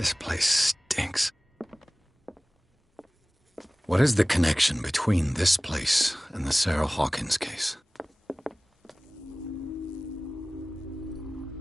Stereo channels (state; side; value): normal; both; correlation 0.98